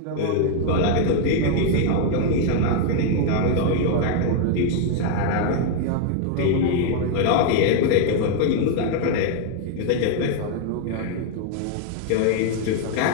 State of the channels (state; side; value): different; both; correlation 0.00